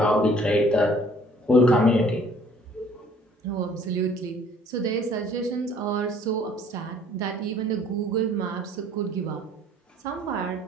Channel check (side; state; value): both; normal; correlation 0.56